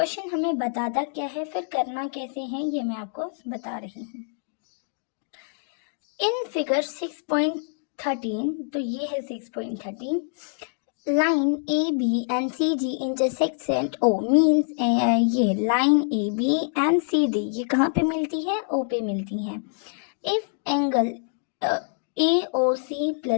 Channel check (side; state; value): right; silent; digital silence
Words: हमें बताता क्या है, फिर करना कैसे है ये मैं आपको बता रही हूँ। इन फिगर 6.13, तो ये है 6.13, line A B and C D intersects at O, means ये line A B and C D ये कहाँ पे मिलती है? ओ पे मिलती है। If angle A O C